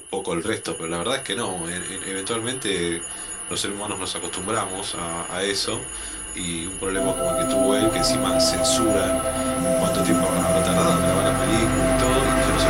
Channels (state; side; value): identical; both; correlation 1.00